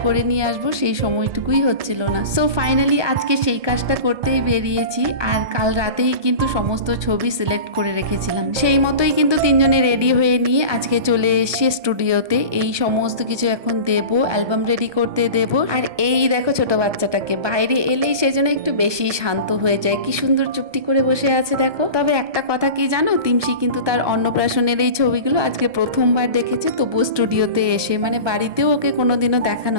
করে নিয়ে আসবো, সেই সময়টুকুই হচ্ছিল না। সো ফাইনালি আজকে সেই কাজটা করতেই বেরিয়েছি। আর কাল রাতেই কিন্তু সমস্ত ছবি সিলেক্ট করে রেখেছিলাম, সেই মতোই কিন্তু তিনজনে রেডি হয়ে নিয়ে আজকে চলে এসেছি স্টুডিওতে। এই সমস্ত কিছু এখন দেব, অ্যালবাম রেডি করতে দেব। আর এই দেখো ছোট বাচ্চাটাকে, বাইরে এলেই সেজন্য একটু বেশি শান্ত হয়ে যায়, কি সুন্দর চুপটি করে বসে আছে দেখো। তবে একটা কথা কি জানো, তিমশি কিন্তু তার অন্নপ্রাশনের এই ছবিগুলো আজকে প্রথমবার দেখেছে, তবুও স্টুডিওতে এসে, মানে বাড়িতেও ওকে কোনোদিনও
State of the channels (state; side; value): late; left; 1.2 ms